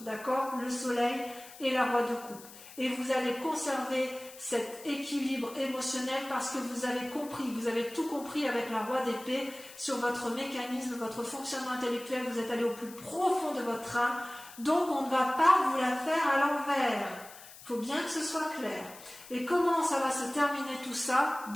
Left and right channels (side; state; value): left; noise; hiss, 18 dB below the sound